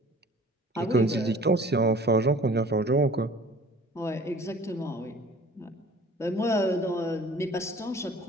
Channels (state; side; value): normal; both; correlation 0.47